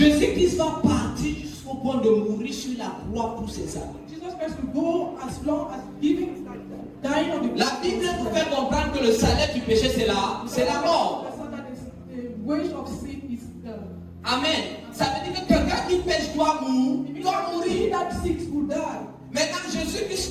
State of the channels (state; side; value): identical; both; correlation 1.00